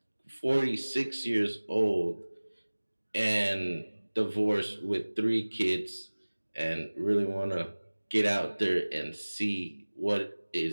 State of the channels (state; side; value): inverted; both; correlation -1.00